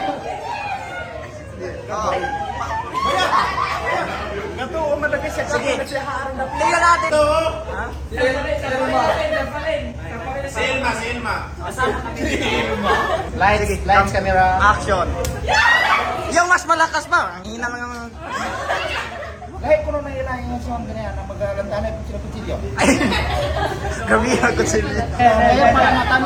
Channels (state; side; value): identical; both; correlation 1.00